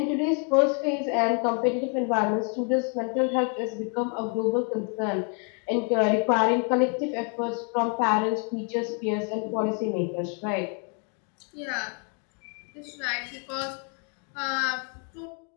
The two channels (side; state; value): right; quieter; 39.8 dB